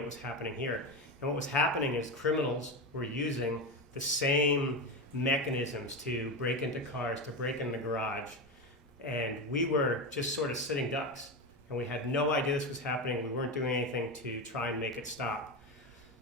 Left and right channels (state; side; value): normal; both; correlation 0.17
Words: was happening here. And what was happening is criminals were using the same mechanisms to break into cars, to break in the garage, and we were just sort of sitting ducks, and we had no idea this was happening. We weren't doing anything to try and make it stop.